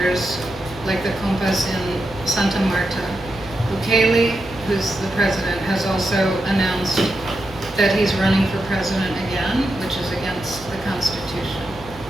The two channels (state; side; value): noise; right; hum, 19 dB below the sound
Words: like the compas in Santa Marta. Bukele, who's the president, has also announced that he's running for president again, which is against the Constitution.